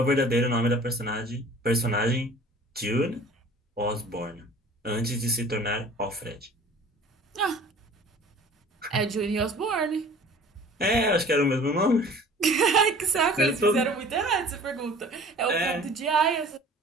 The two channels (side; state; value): both; normal; correlation 0.47